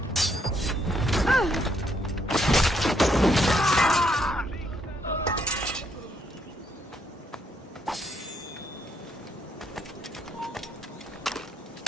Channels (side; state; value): both; normal; correlation 0.73